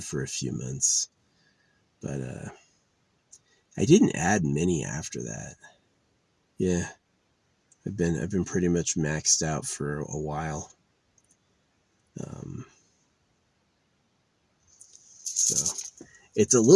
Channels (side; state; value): both; identical; correlation 1.00